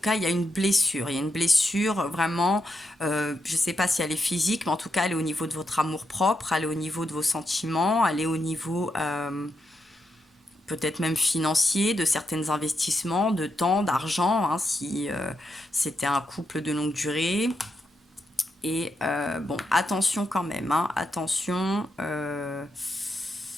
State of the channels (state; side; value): normal; both; correlation 0.84